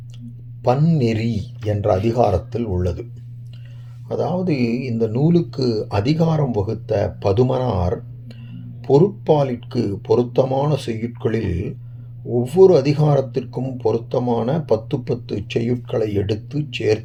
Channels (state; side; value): identical; both; correlation 1.00